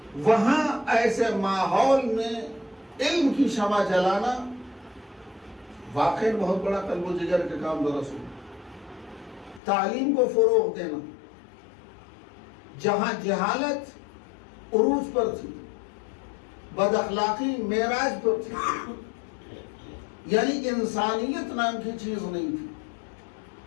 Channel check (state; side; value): drops out; right; at 9.6 s